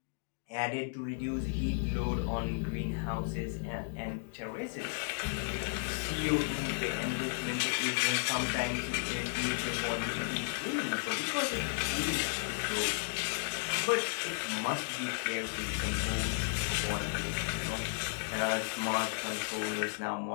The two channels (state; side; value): silent; right; digital silence